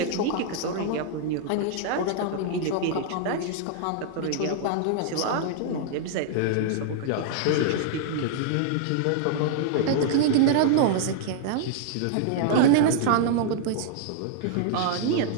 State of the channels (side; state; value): both; different; correlation -0.01